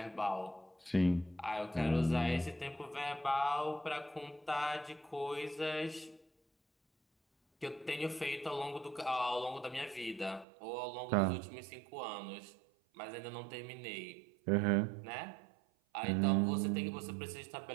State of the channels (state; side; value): drops out; left; at 10.5 s